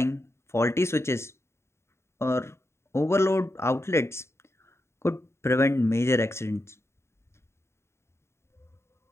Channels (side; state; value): right; late; 0.13 ms